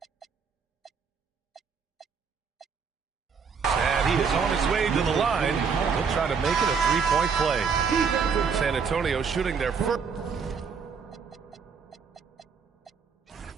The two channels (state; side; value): quieter; left; 6.0 dB